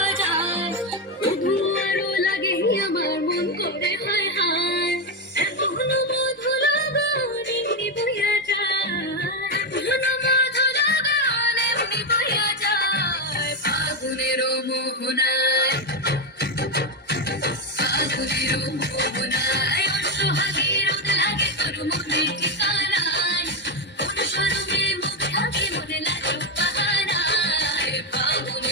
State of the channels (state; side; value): normal; both; correlation 0.07